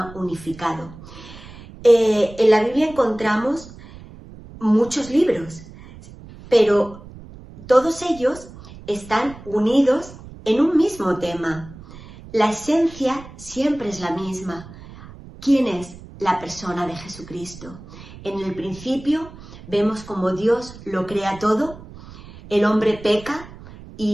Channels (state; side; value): noise; right; rumble, 17 dB below the sound